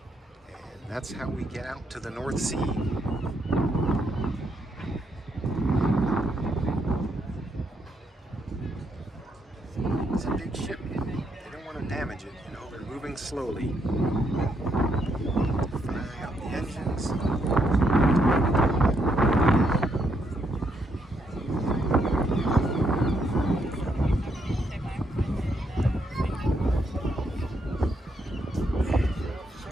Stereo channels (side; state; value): both; normal; correlation 0.76